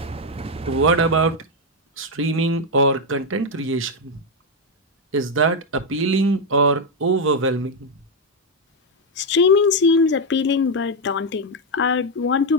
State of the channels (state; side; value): normal; both; correlation 0.03